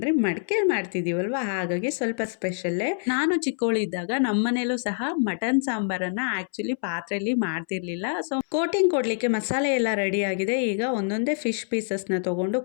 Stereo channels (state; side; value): silent; right; 61 dB below the other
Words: ಮಡಿಕೆ ಮಾಡ್ತಿದೀವಲ್ವಾ, ಹಾಗಾಗಿ ಸ್ವಲ್ಪ ಸ್ಪೆಷಲ್ಲೇ. ನಾನು ಚಿಕ್ಕವಳಿದ್ದಾಗ ನಮ್ಮ ಮನೇಲೂ ಸಹ ಮಟನ್ ಸಾಂಬಾರನ್ನ ಆಕ್ಚುಲಿ ಪಾತ್ರೆಯಲ್ಲಿ ಮಾಡ್ತಿರ್ಲಿಲ್ಲ. ಸೊ ಕೋಟಿಂಗ್ ಕೊಡ್ಲಿಕ್ಕೆ ಮಸಾಲೆ ಎಲ್ಲ ರೆಡಿ ಆಗಿದೆ. ಈಗ ಒಂದೊಂದೇ ಫಿಶ್ ಪೀಸಸ್ನ ತಗೊಂಡು